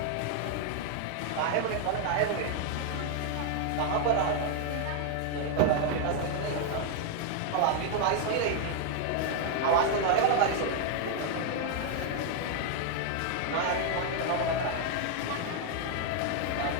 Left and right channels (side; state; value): both; different; correlation 0.00